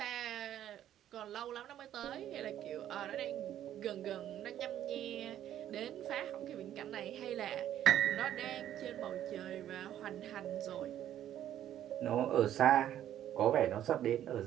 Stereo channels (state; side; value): quieter; left; 11.4 dB